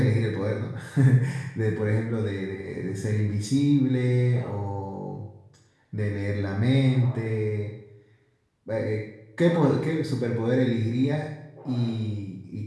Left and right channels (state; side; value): identical; both; correlation 1.00